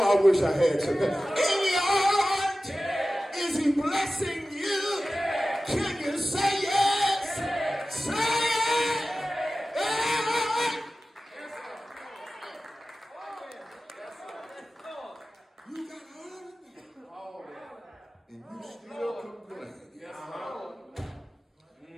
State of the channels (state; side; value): normal; both; correlation 0.95